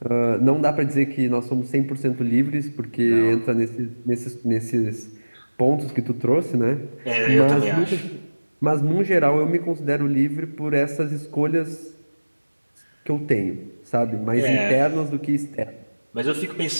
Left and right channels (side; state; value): both; inverted; correlation -1.00